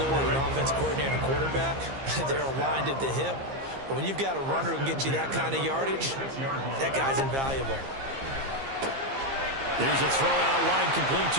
that an offense coordinator and a quarterback, they're aligned at the hip. But when you've got a runner who can get you that kind of yardage, that guy's invaluable. Here's a throw out line complete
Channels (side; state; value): left; late; 15 ms